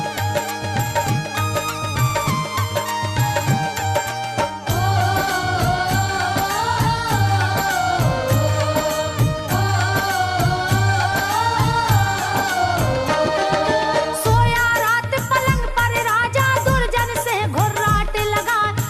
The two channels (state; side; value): identical; both; correlation 1.00